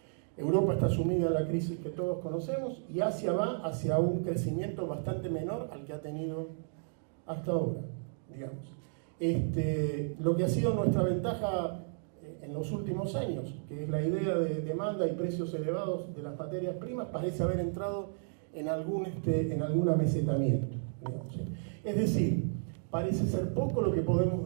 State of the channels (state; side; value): silent; left; digital silence